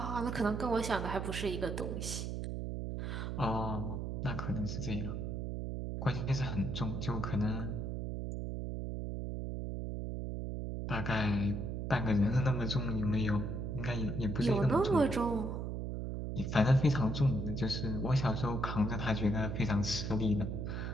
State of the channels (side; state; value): right; noise; hum, 3 dB below the sound